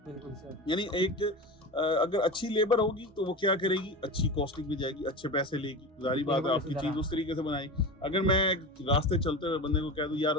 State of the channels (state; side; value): normal; both; correlation 0.27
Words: यानी एक अगर अच्छी लेबर होगी तो वो क्या करेगी, अच्छी कॉस्टिंग भी जाएगी, अच्छे पैसे लेगी, जारी बात है आपकी चीज उस तरीके से बनाई। अगर मैं रास्ते चलते हुए बंदे को कह दूं यार